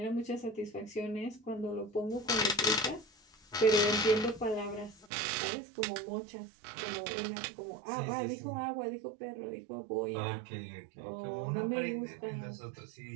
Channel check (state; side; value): drops out; left; at 5.1 s